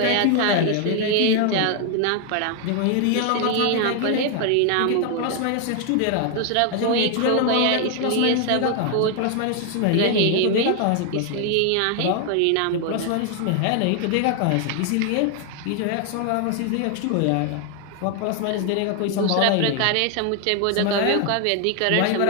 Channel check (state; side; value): different; both; correlation 0.00